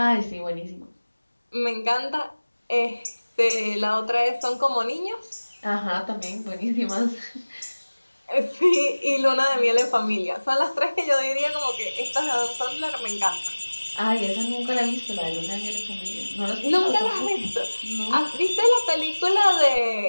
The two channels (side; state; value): both; inverted; correlation -1.00